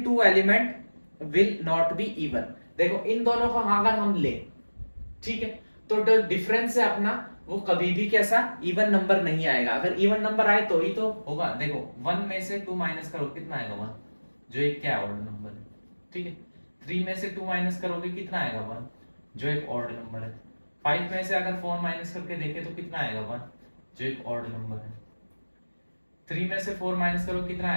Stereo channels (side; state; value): both; inverted; correlation -1.00